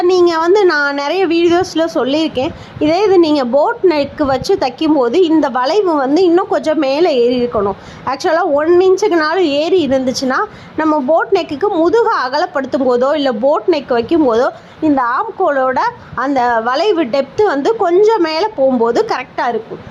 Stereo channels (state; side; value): identical; both; correlation 1.00